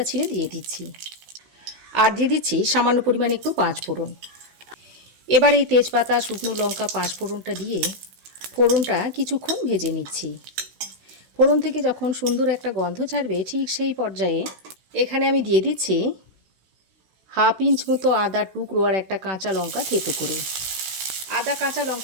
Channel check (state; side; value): late; left; 16 ms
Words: ছিঁড়ে দিয়ে দিচ্ছি, আর দিয়ে দিচ্ছি সামান্য পরিমাণে একটু 5 ফোড়ন। এবার এই তেজপাতা, শুকনো লঙ্কা, 5 ফোড়নটা দিয়ে ফোড়নটা কিছুক্ষণ ভেজে নিচ্ছি। ফোড়ন থেকে যখন সুন্দর একটা গন্ধ ছাড়বে ঠিক সেই পর্যায়ে এখানে আমি দিয়ে দিচ্ছি 1/2 ইঞ্চ মতো আদার টুকরো আর একটা কাঁচা লঙ্কা থেঁতো করে। আদা কাঁচা